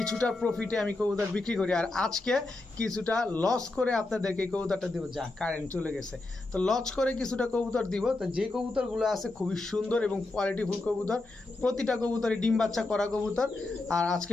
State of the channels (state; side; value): quieter; right; 3.1 dB